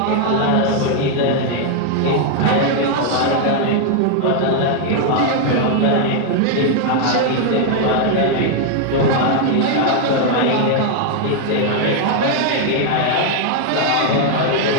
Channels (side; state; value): both; different; correlation 0.00